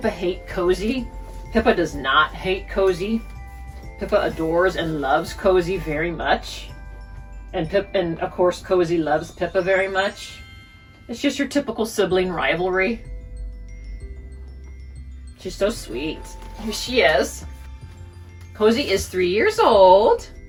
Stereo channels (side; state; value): both; identical; correlation 1.00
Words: hate Cozy? Pippa does not hate Cozy. Pippa adores and loves Cozy very much. And of course Cozy loves Pippa very much. It's just your typical sibling rivalry. She's so sweet. Here she is. Cozy is 3 years old.